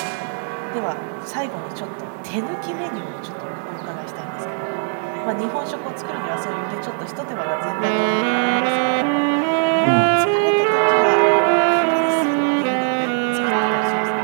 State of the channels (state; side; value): silent; left; 64 dB below the other